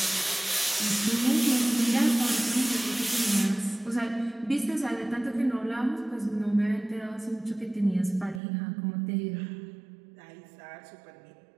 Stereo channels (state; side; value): drops out; left; at 8.4 s